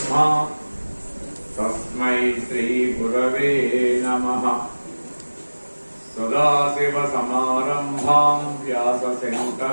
తస్మై శ్రీ గురవే నమః. సదాశివ సమారంభాం వ్యాస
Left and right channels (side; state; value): both; inverted; correlation -1.00